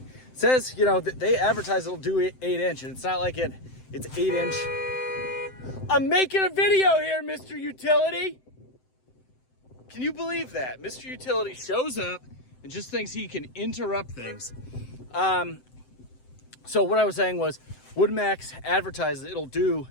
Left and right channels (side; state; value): right; late; 7.8 ms